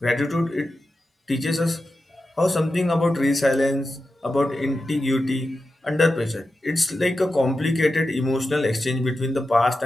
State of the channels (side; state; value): both; normal; correlation 0.91